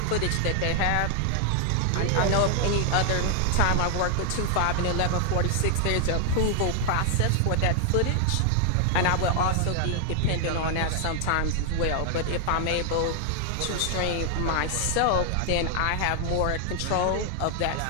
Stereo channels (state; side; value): different; both; correlation 0.00